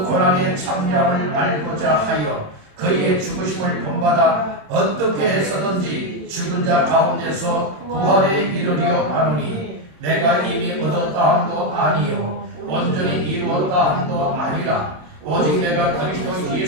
고난의 참여함을 알고자 하여 그의 죽으심을 본받아 어떻게 해서든지 죽은 자 가운데서 부활에 이르려 하노니 내가 이미 얻었다 함도 아니요 온전히 이루었다 함도 아니라 오직 내가 그리스도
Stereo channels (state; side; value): late; left; 27 ms